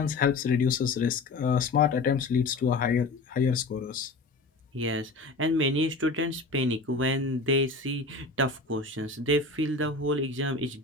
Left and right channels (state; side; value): quieter; right; 3.5 dB